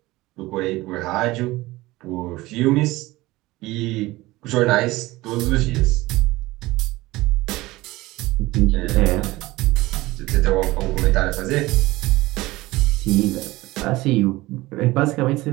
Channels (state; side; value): quieter; left; 19.3 dB